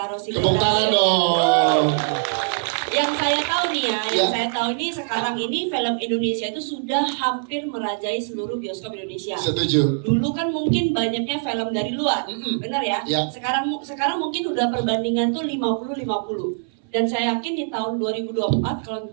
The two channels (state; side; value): silent; left; 60 dB below the other